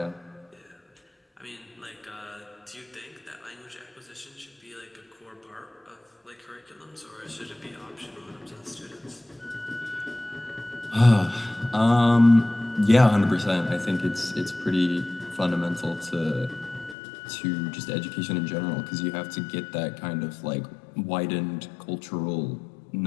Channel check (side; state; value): right; drops out; at 16.9 s